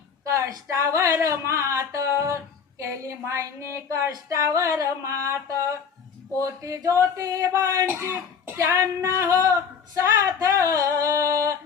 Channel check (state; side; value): quieter; right; 6.5 dB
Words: कष्टावर मात केली मायनी कष्टावर मात पोती ज्योतिबांची त्यांना हो साथ